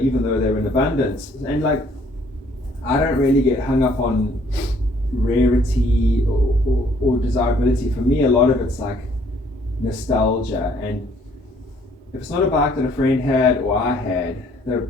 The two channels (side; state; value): both; normal; correlation 0.62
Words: though they're in abundance. And like, I don't really get hung up on rarity or desirability. For me, a lot of it's like nostalgia. And if it's not a bike that a friend had or I had, there are